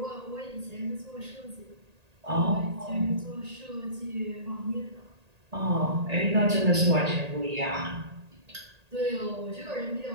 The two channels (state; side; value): late; left; 1.8 ms